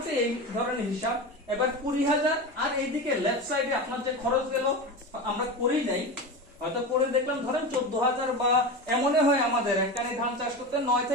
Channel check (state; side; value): normal; both; correlation 0.24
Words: এই ধরনের হিসাব। এবার 20,000 আর এইদিকে লেফট সাইডে আপনার যে খরচ গেল আমরা করি নাই, হয়তো করে দেখলাম ধরেন 14,000 বা এমনই হয় আমাদের একটানি ধান চাষ করতে 9